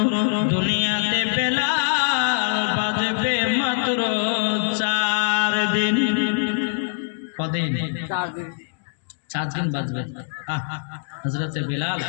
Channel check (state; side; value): silent; right; digital silence